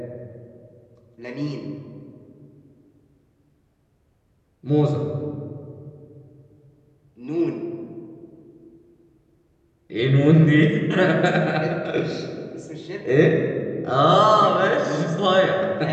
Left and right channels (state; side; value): identical; both; correlation 1.00